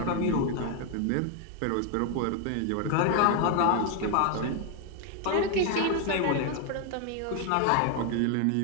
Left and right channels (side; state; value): both; different; correlation 0.01